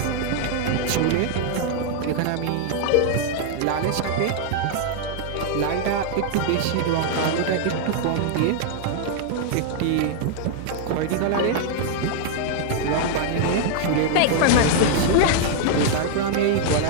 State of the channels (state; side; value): different; both; correlation -0.01